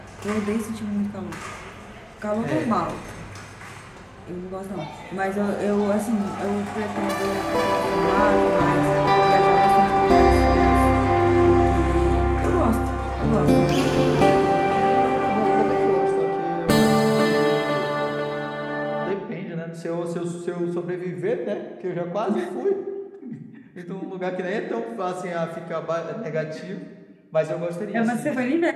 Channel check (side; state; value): both; identical; correlation 1.00